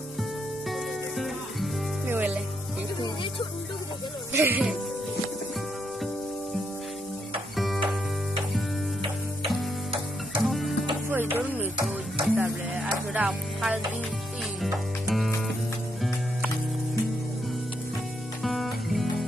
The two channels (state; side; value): normal; both; correlation 0.78